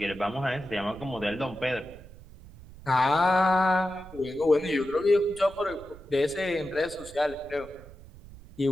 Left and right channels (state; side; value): noise; right; rumble, 19 dB below the sound